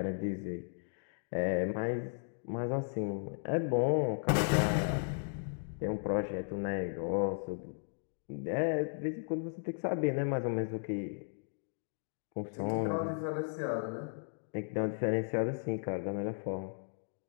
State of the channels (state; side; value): silent; right; digital silence